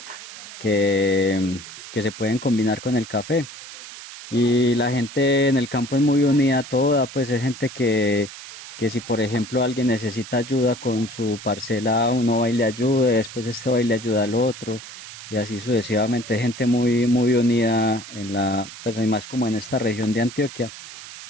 se pueden combinar con el café. Y la gente en el campo es muy unida toda, pues es gente que si por ejemplo alguien necesita ayuda con su parcela, uno va y le ayuda, después este va y le ayuda al otro, y así sucesivamente, es gente muy unida en pues hay más como en esta región de Antioquia,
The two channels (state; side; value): noise; right; hiss, 14 dB below the sound